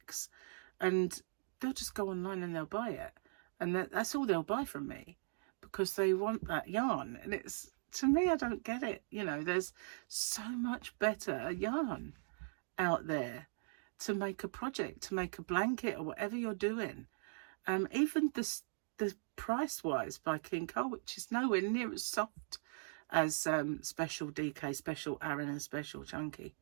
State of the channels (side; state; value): left; silent; digital silence